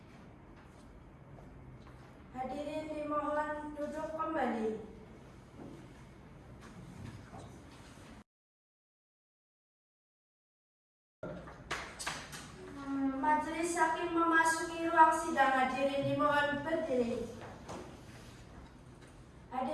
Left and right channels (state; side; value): identical; both; correlation 1.00